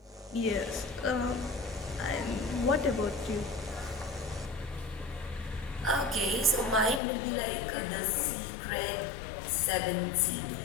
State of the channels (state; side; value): drops out; right; at 7.0 s